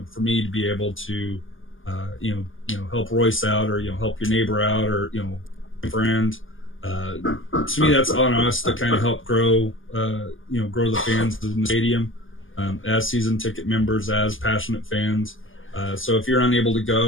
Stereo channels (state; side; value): late; right; 0.58 ms